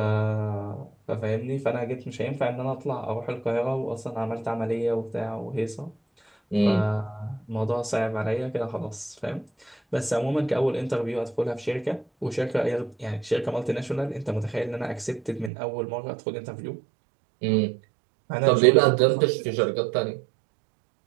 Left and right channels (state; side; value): drops out; left; at 15.5 s